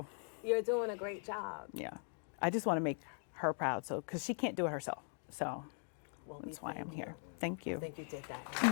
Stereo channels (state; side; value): silent; right; 51 dB below the other